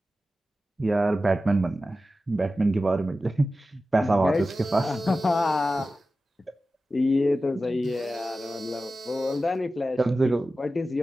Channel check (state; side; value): normal; both; correlation 0.94